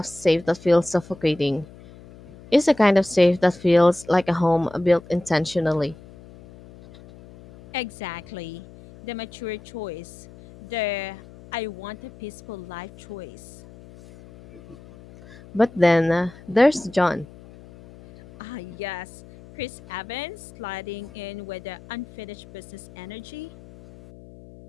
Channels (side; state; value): left; noise; hum, 20 dB below the sound